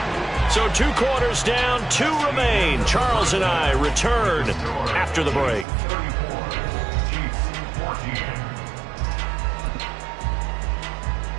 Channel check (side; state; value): left; drops out; at 5.7 s